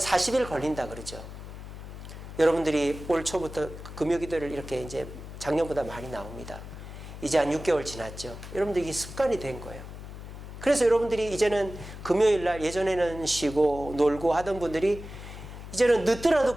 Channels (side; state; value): left; noise; hum, 12 dB below the sound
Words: 40일 걸린다 그러죠. 여러분들이 올 초부터 금요기도를 이렇게 이제 작년보다 많이 나옵니다. 이제 한 6개월 지났죠. 여러분들이 습관이 된 거예요. 그래서 여러분들이 이제는 금요일 날, 예전에는 쉬고 놀고 하던 분들이 이제는 늦더라도